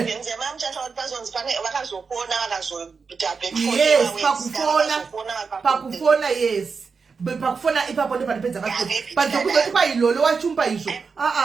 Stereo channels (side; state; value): left; quieter; 5.1 dB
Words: pakufona yes. Pakufona ipapo ndo panipedza kaso. But zokuzoti kwa Lolo wachumba izvo.